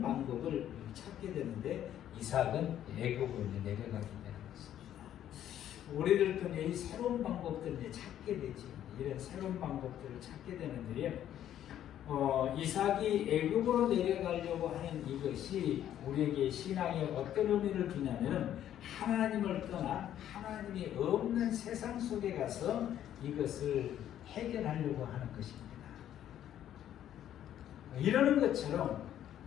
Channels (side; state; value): right; quieter; 11.1 dB